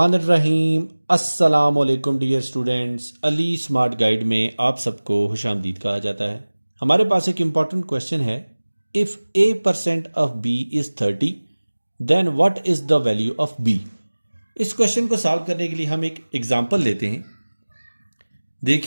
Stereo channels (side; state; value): both; inverted; correlation -1.00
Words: अस्सलाम वालेकुम dear students. Ali smart guide में आप सबको खुशामदीद कहा जाता है। हमारे पास एक इम्पॉर्टेंट क्वेश्चन है, if a% of b is 30 then what is the value of b। इस क्वेश्चन को सॉल्व करने के लिए हम एक एग्जांपल लेते हैं।